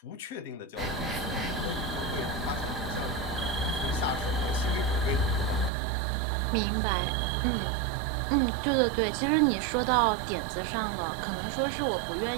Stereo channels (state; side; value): drops out; left; at 5.7 s